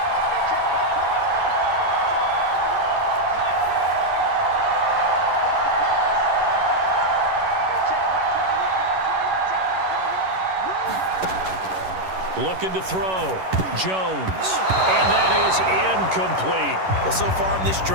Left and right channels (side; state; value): left; late; 11 ms